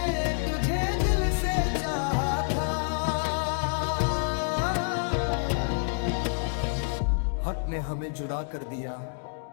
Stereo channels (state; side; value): silent; right; digital silence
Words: तुझे दिल से चाहा था। हक ने हमें जुड़ा कर दिया,